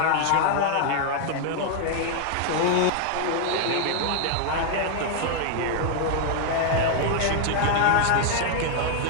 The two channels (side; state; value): both; different; correlation 0.00